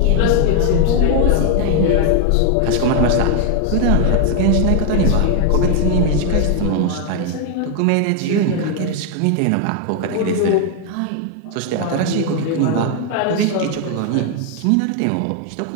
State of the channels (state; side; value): different; both; correlation 0.00